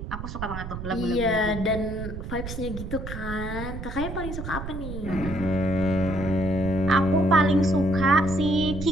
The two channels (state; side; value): noise; right; rumble, 8 dB below the sound